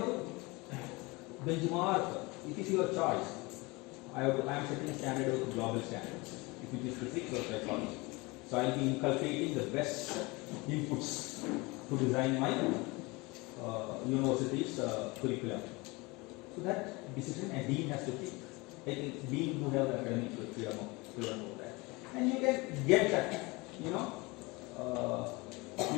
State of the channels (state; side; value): quieter; right; 24.7 dB